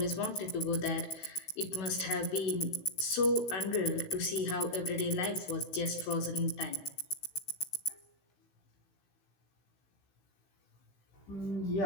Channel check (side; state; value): right; late; 15 ms